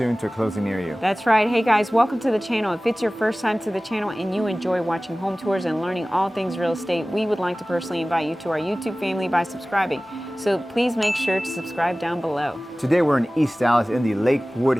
to a closing near you. That's right. Hey guys, welcome to the channel. If it's your first time to the channel and you enjoy watching home tours and learning all things real estate, we would like to personally invite you to our YouTube family by subscribing. So please make sure to subscribe down below. Today we're in East Dallas in the Lakewood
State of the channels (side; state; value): both; normal; correlation 0.98